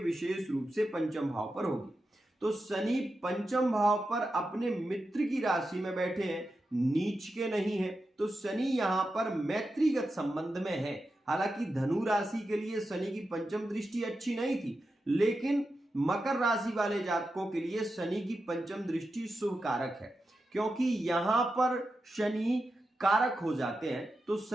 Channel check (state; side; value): normal; both; correlation 0.89